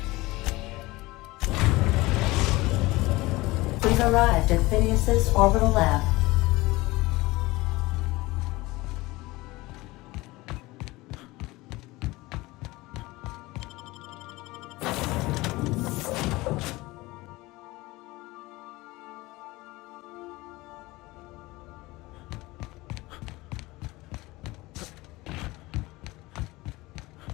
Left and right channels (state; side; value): quieter; right; 20.7 dB